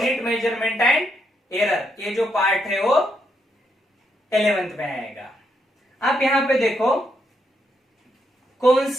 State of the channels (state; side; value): normal; both; correlation 0.78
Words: measurement and error, ये जो पार्ट है वो 11th में आएगा. आप यहां पे देखो कौन